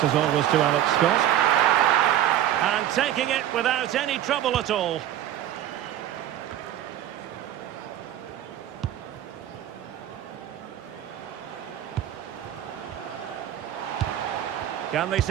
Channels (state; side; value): quieter; left; 11.9 dB